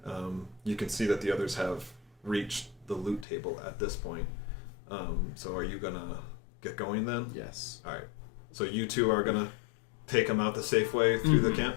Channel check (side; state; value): right; drops out; at 3.2 s